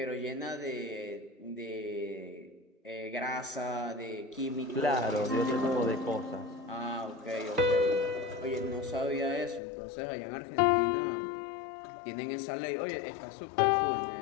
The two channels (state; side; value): drops out; right; at 9.6 s